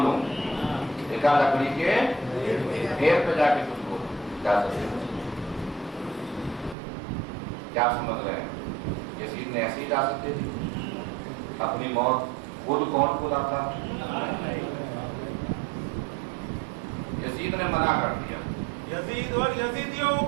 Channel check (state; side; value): drops out; left; at 6.8 s